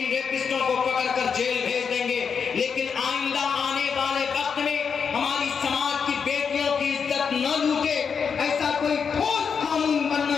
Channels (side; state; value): right; quieter; 6.3 dB